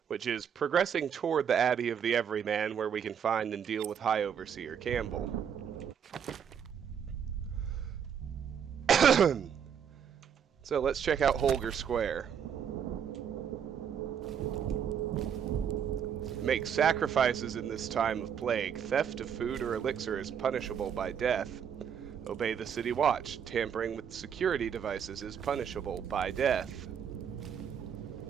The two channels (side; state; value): left; quieter; 7.9 dB